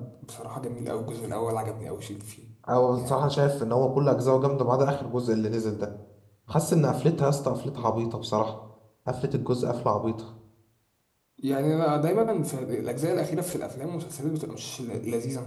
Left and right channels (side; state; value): both; identical; correlation 1.00